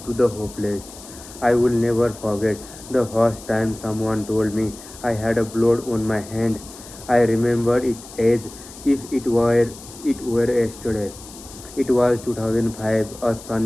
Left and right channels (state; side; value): noise; left; hiss, 17 dB below the sound